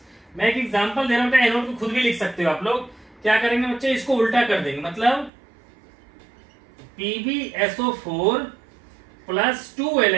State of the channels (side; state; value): left; drops out; at 5.3 s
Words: मैं एक एग्जांपल दे रहा हूं, एनोड को खुद भी लिख सकते हो आप लोग। क्या करेंगे बच्चे, इसको उल्टा कर देंगे, मतलब PbSO4 प्लस 2